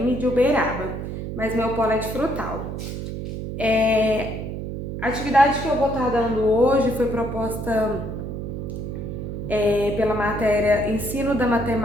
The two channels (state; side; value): noise; right; hum, 6 dB below the sound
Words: de Uberaba, mas meu polo é de Frutal. A atividade que eu vou estar dando hoje foi proposta pela matéria Ensino da